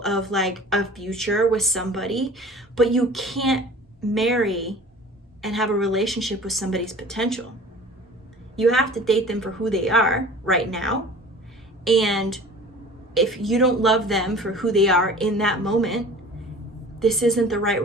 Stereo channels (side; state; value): both; normal; correlation 0.43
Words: of like a future with somebody. But you can't marry and have a relationship with somebody's potential. You have to date them for who they are right now. And if you don't love them for who they are in that moment, this isn't the right